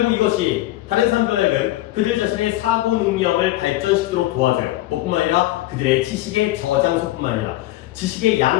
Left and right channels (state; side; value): quieter; right; 16.0 dB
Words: 이것이 다른 사람들에게는 그들 자신의 사고 능력을 발전시키도록 도와줘요. 뿐만 아니라 그들의 지식의 저장소뿐만 아니라 지식의